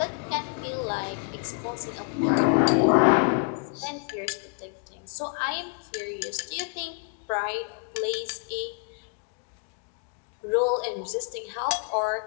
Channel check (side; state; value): right; quieter; 39.6 dB